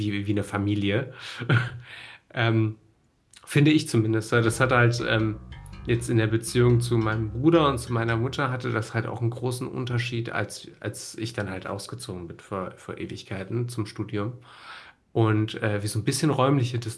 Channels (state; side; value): identical; both; correlation 1.00